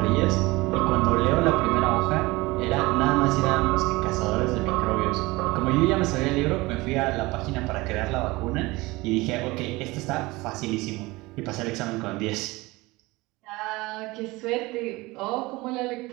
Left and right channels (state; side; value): quieter; left; 21.8 dB